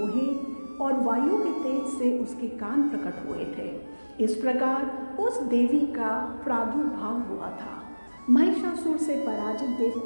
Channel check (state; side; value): inverted; both; correlation -1.00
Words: और वायु के तेज से उसके कान प्रकट हुए थे। इस प्रकार उस देवी का प्रादुर्भाव हुआ था। महिषासुर से पराजित